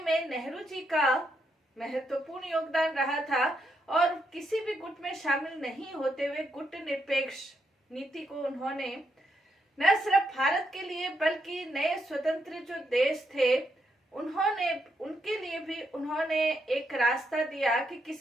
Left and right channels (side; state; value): both; normal; correlation 0.79